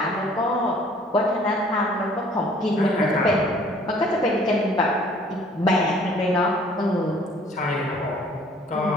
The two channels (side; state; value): both; normal; correlation 0.56